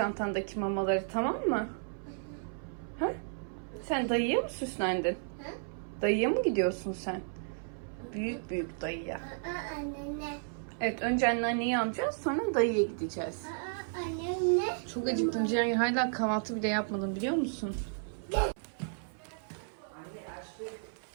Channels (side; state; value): left; silent; 56 dB below the other